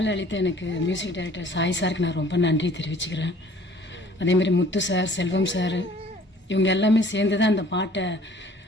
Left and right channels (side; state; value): both; normal; correlation 0.54